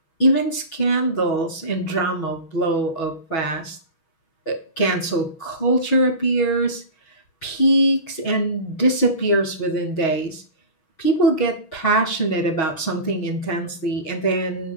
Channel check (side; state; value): right; late; 6.2 ms